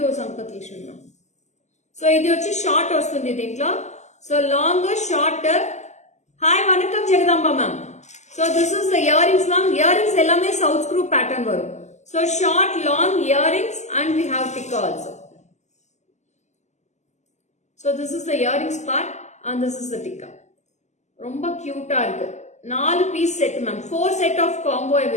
Sampath Lakshmi ma'am. So idi vachi short vastundi dintlo. So long, short. Hi vanakkam Jagadamba ma'am. So this is the earrings ma'am. Earrings ellame south screw pattern varum. So short, long earrings and we have tikka also. So this is the earrings part and this is the tikka. Romba cute ah irukku. 4 piece set ma'am. 4 set of combo I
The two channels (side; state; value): right; late; 0.33 ms